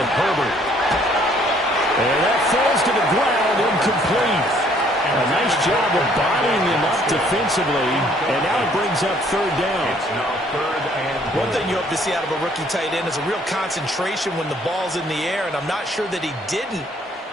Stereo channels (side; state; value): both; normal; correlation 0.62